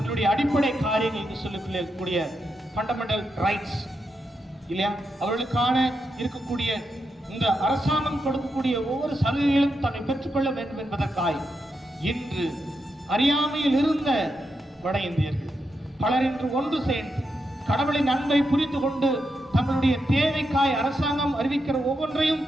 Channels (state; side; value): normal; both; correlation 0.85